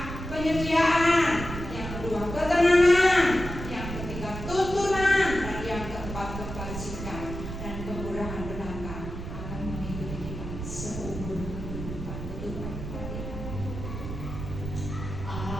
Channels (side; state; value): right; noise; rumble, 7 dB below the sound